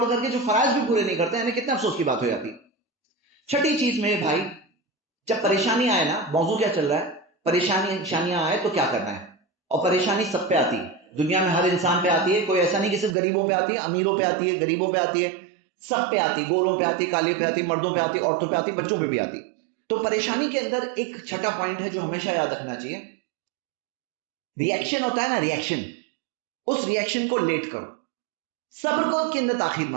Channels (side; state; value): left; drops out; at 13.2 s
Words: کر کے جو فرائض بھی پورے نہیں کرتے ہیں، کتنے افسوس کی بات ہو جاتی. چھٹی چیز میں بھائی، جب پریشانی آئے نا، موضوع کیا چل رہا ہے، پریشانیاں آئے تو کیا کرنا ہے. اور پریشانی سب پہ آتی ہے، دنیا میں ہر انسان پہ آتی ہے، کوئی ایسا نہیں کہ صرف غریبوں پہ آتی ہے، امیروں پہ آتی ہے، غریبوں پہ آتی ہے، سب پہ آتی، گوروں پہ آتی، کالے پہ آتی، مردوں پہ آتی، عورتوں پہ آتی، بچوں پہ بھی آتی. تو پریشانی کے اندر ایک چھٹا پوائنٹ ہے جو ہمیشہ یاد رکھنا چاہیے، ریئیکشن ہوتا ہے نا، ریئیکشن، اس ریئیکشن کو لیٹ کرو، صبر کو کے اندر تاخیر